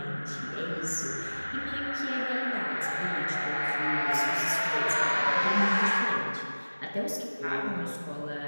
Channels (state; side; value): inverted; both; correlation -1.00